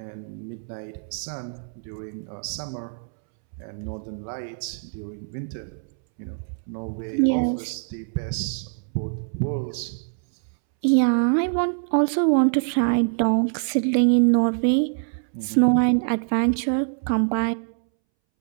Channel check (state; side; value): silent; left; 62 dB below the other